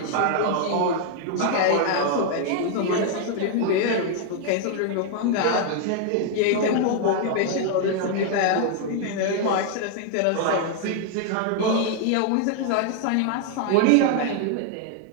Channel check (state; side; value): different; both; correlation 0.00